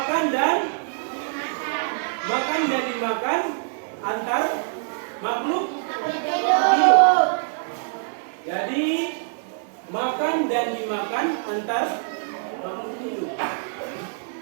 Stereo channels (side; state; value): left; silent; 56 dB below the other